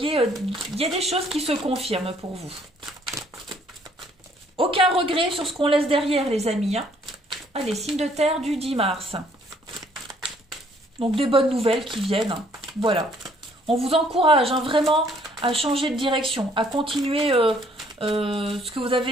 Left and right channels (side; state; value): both; normal; correlation 0.63